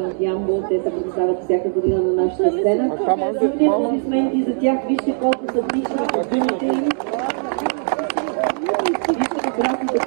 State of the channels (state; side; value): silent; left; digital silence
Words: от Ямбол, те се представят всяка година на нашата сцена. Силни аплодисменти за тях, вижте колко са отлични костюмите им. Вижте прекрасните